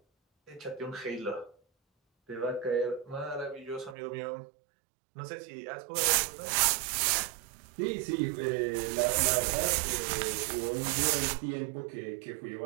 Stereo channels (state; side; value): drops out; left; at 4.0 s